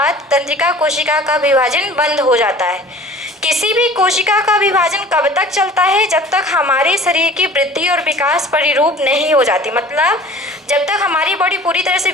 तंत्रिका कोशिका का विभाजन बंद हो जाता है। किसी भी कोशिका का विभाजन कब तक चलता है, जब तक हमारे शरीर की वृद्धि और विकास परिरूप नहीं हो जाती, मतलब जब तक हमारी बॉडी पूरी तरह से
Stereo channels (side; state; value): both; normal; correlation 0.44